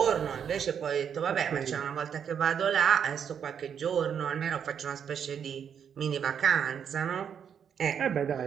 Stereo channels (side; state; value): left; quieter; 7.9 dB